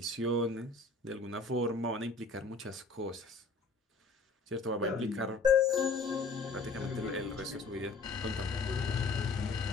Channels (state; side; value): quieter; right; 3.9 dB